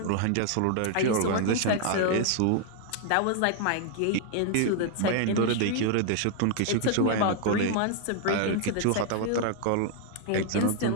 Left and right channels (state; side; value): different; both; correlation 0.00